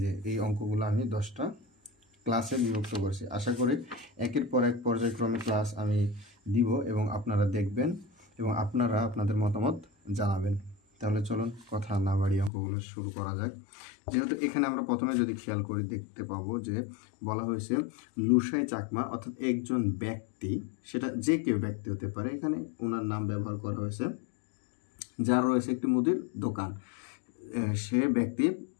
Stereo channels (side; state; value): right; drops out; at 12.5 s